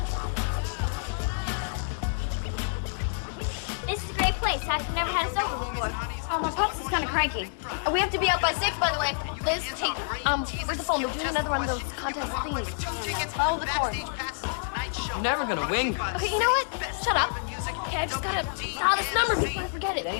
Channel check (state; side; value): silent; right; digital silence